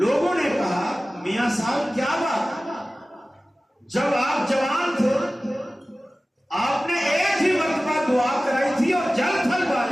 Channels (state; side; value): normal; both; correlation 0.97